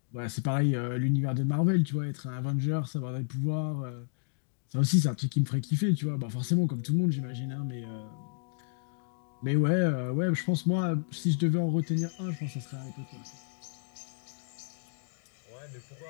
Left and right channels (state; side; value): silent; right; digital silence